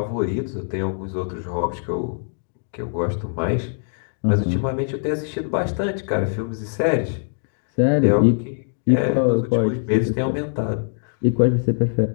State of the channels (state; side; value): silent; right; digital silence